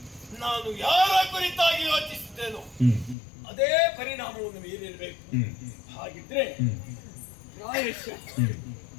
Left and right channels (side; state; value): right; drops out; at 3.2 s